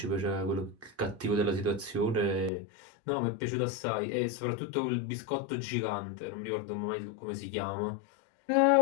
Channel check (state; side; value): drops out; right; at 2.5 s